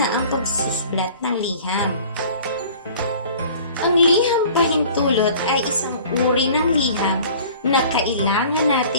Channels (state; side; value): inverted; both; correlation -0.47